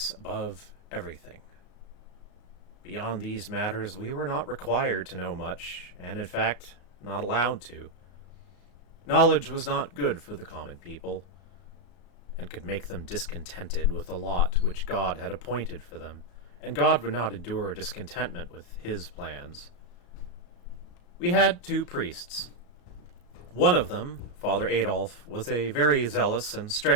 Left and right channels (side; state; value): right; late; 34 ms